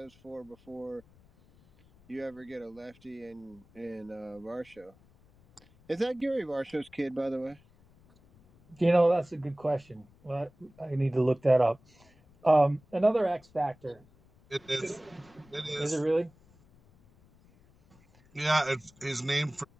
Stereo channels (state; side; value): noise; left; rumble, 28 dB below the sound